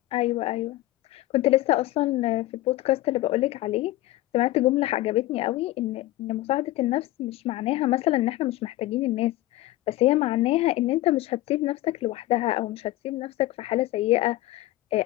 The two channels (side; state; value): right; quieter; 16.7 dB